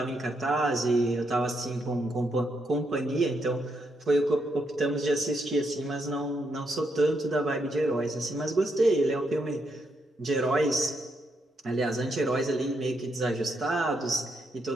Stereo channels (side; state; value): both; normal; correlation 0.79